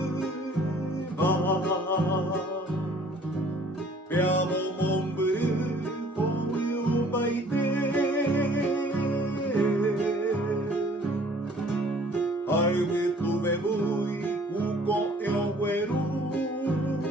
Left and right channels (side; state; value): both; normal; correlation 0.55